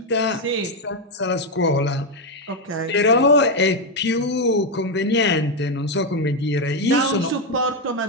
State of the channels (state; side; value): normal; both; correlation 0.05